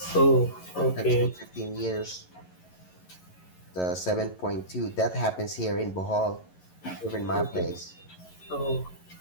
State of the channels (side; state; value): right; late; 11 ms